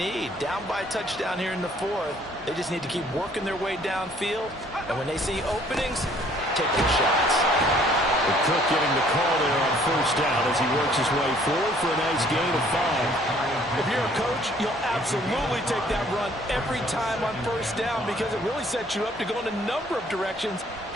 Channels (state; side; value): normal; both; correlation 0.59